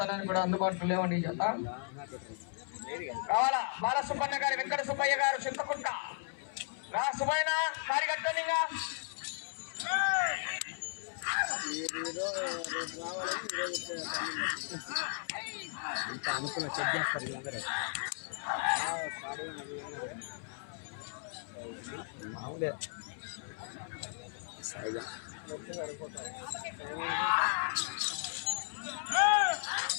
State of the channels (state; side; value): silent; right; 54 dB below the other